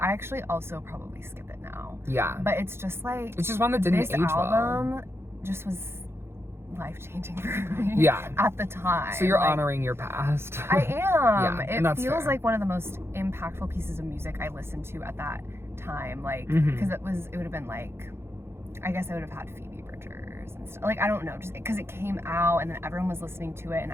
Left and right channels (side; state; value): left; late; 0.12 ms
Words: actually also probably skip it now. Yeah. But it's just like It's just one that didn't this age well. album just was life-changing for me. Yeah. At the time. So you're Like, honoring your past. I am. Yeah, and It that's feels fair. like one of the most impactful pieces of music I listened to at that time. Like, Mhm. because it would have been like, I guess I would have had Phoebe Bridgers and stuff. Like, I don't know, just because it came out and then everyone was listening to it and